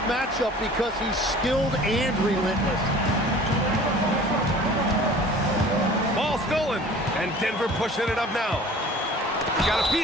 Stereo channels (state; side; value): normal; both; correlation 0.46